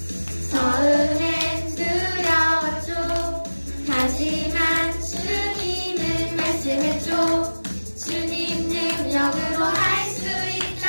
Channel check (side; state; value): both; inverted; correlation -1.00